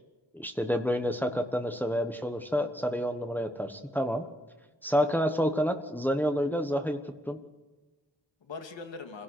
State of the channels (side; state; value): both; normal; correlation 0.77